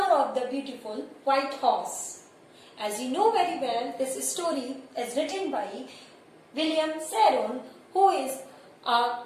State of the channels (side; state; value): both; identical; correlation 1.00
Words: of the Beautiful White Horse. As you know very well, this story is written by William Saron, who is an